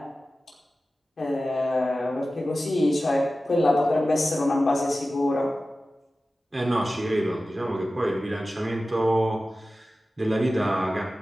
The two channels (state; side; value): normal; both; correlation 0.95